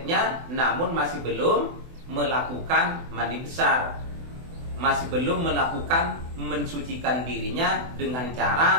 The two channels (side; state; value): left; late; 24 ms